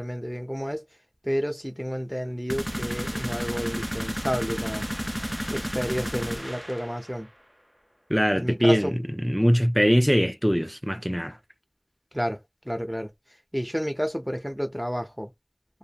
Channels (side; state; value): both; identical; correlation 1.00